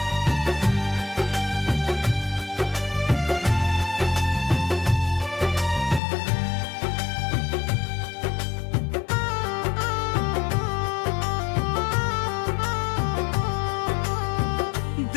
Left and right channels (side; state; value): right; drops out; at 6.0 s